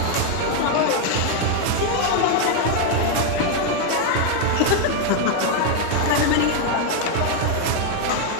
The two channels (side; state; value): both; different; correlation 0.01